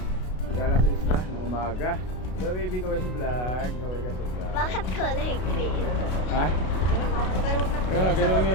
alas 6 ng umaga. So baby, kaway sa vlog. Kaway ka sa vlog. Bakit kulay green? Ha? Kaya ganun nga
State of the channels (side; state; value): right; late; 33 ms